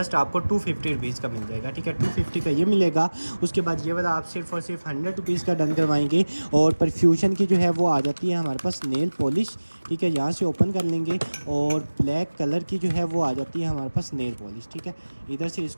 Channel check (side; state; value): both; inverted; correlation -1.00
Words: आपको 250 रुपीज़ का मिल जाएगा। ठीक है, 250 का ये मिलेगा। उसके बाद ये वाला आप सिर्फ और सिर्फ 100 रुपीज़ का डन करवाएंगे। और परफ्यूशन की जो है वो आ जाती है हमारे पास नेल पॉलिश। ठीक है, यहाँ से ओपन कर लेंगे और ब्लैक कलर की जो है वो आ जाती है हमारे पास नेल पॉलिश। ठीक है, इधर से